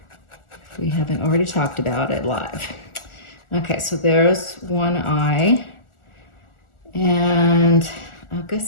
if we haven't already talked about it live. Okay, so there's one eye. And I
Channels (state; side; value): late; right; 1.4 ms